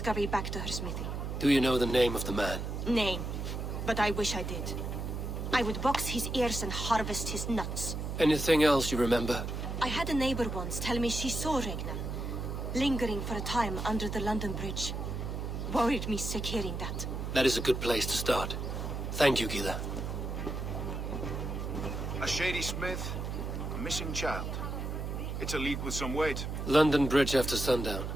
back to her smithy. Do you know the name of the man? Name. But I wish I did. I would box his ears and harvest his nuts. Anything else you remember? I had a neighbor once tell me she saw Regna, lingering for a time under the London Bridge. Worried me sick hearing that. That is a good place to start. Thank you, Gila. A shady smith, a missing child. It's a lead with some weight. London Bridge after sundown.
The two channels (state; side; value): noise; right; hum, 4 dB below the sound